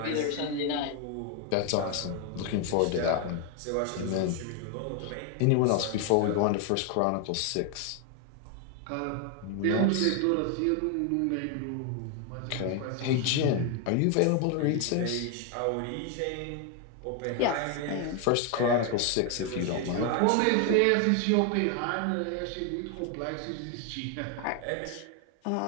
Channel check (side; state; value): both; different; correlation 0.01